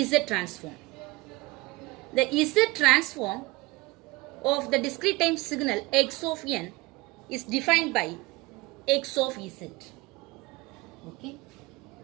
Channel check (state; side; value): quieter; left; 22.2 dB